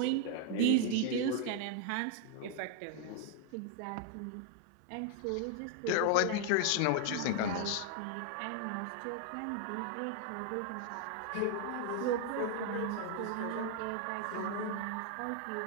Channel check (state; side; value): different; both; correlation 0.00